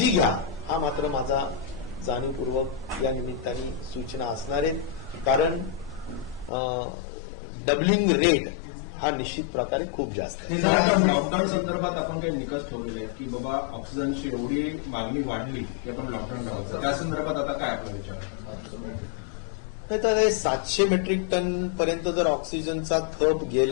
घ्या हा मात्र माझा जाणीवपूर्वक या निमित्ताने सूचना असणार आहेत. कारण डबलिंग रेट हा निश्चित प्रकारे खूप जास्त आहे. लॉकडाऊन संदर्भात आपण काही निकष ठेवलेले आहेत की बाबा ऑक्सिजनची एवढी मागणी वाढली की आपण लॉकडाऊन ठेवायचं, त्या संदर्भात आता काय आपला विचार? नाही तर हे 700 मेट्रिक टन पर्यंत जर ऑक्सिजनचा थप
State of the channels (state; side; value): drops out; right; at 6.5 s